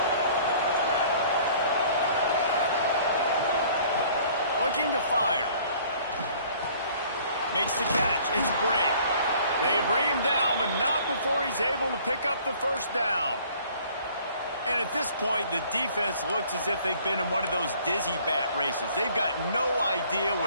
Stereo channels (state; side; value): inverted; both; correlation -0.54